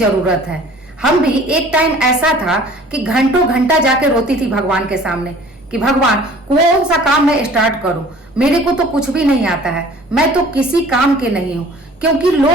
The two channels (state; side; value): normal; both; correlation 0.50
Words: है। हम भी एक टाइम ऐसा था कि घंटों घंटा जाके रोती थी भगवान के सामने कि भगवान कौन सा काम मैं स्टार्ट करूं, मेरे को तो कुछ भी नहीं आता है, मैं तो किसी काम के नहीं हूं। क्योंकि